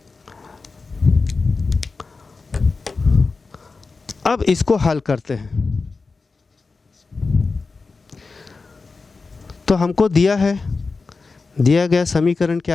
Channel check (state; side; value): quieter; right; 4.2 dB